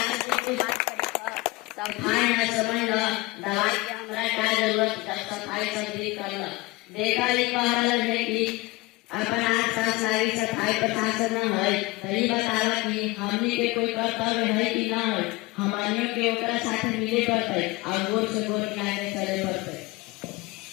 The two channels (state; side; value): quieter; right; 21.8 dB